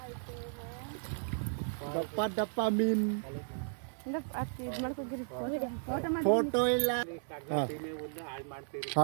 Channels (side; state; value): left; silent; digital silence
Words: ದಪ್ಪ ಮೀನ್ ಫೋಟೋ ಇಲ್ಲ